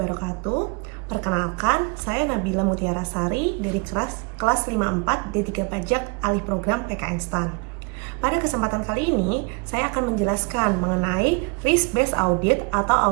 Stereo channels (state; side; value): quieter; left; 31.0 dB